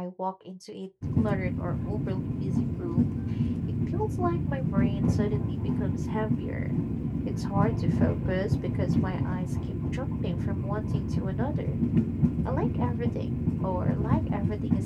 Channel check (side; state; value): both; identical; correlation 1.00